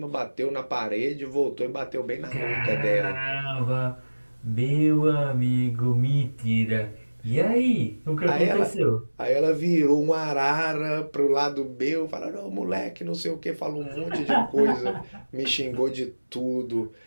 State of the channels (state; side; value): inverted; both; correlation -1.00